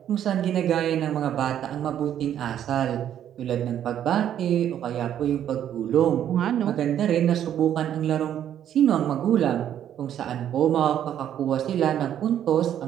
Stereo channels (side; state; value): left; quieter; 10.3 dB